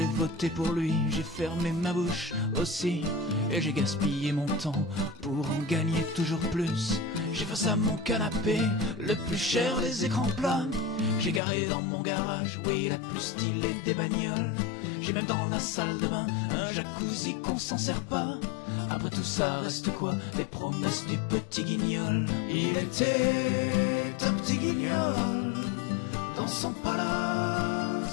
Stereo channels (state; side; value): drops out; right; at 11.4 s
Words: voté pour lui, j'ai fermé ma bouche aussi, et j'ai gaspillé mon temps pour en gagner toujours plus. J'ai face à mon canapé le plus cher des écrans plats. J'ai garé dans mon garage, oui, la plus stylée des bagnoles. J'ai même dans la salle de bain un jacuzzi qu'on s'en sert pas. Après tout ça reste quoi? Les promesses du petit guignol. Il était un petit guignol dans son